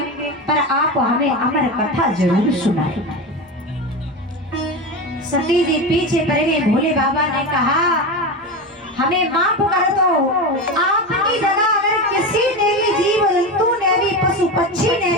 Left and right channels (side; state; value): both; normal; correlation 0.21